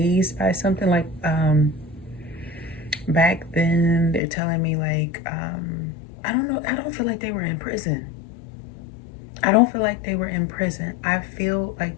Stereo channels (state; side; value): drops out; right; at 4.2 s